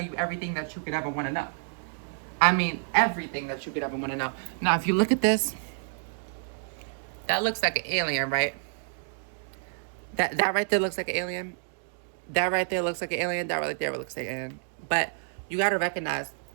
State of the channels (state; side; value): silent; left; digital silence